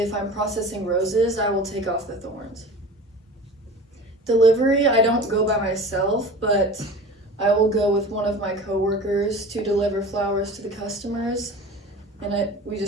I'm processing roses, I will take off the thorns. Delivery, I don't go by myself, but I will go with one of my coworkers to deliver flowers to the customers, and we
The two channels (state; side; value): normal; both; correlation 0.37